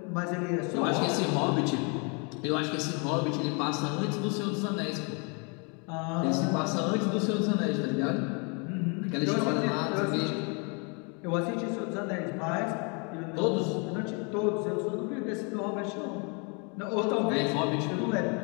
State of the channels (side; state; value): right; quieter; 34.2 dB